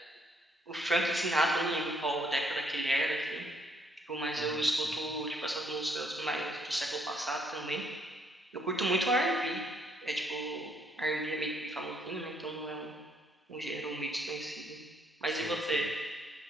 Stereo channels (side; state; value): both; normal; correlation 0.69